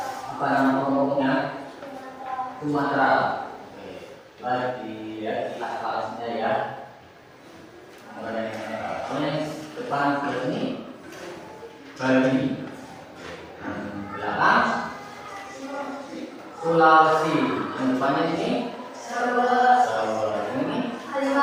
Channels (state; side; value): identical; both; correlation 1.00